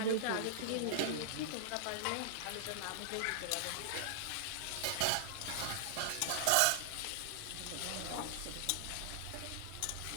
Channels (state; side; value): different; both; correlation -0.01